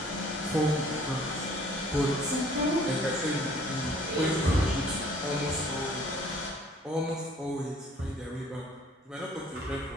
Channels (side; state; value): both; normal; correlation 0.56